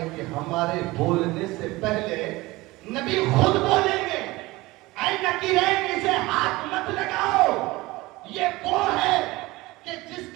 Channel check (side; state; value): left; quieter; 20.5 dB